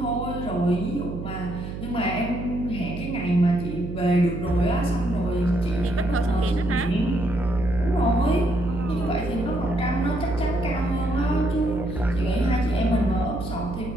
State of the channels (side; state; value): right; noise; hum, 8 dB below the sound